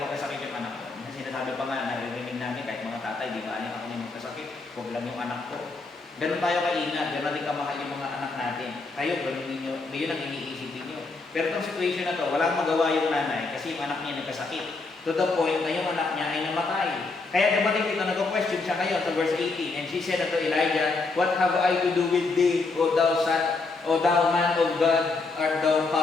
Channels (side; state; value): right; quieter; 3.8 dB